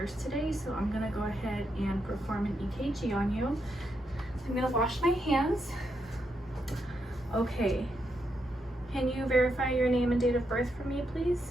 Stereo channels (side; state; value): both; normal; correlation 0.81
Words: today, so I'm going to go ahead and perform an EKG on you. So I'm going to wash my hands. Okay. Can you verify your name and date of birth for me, please?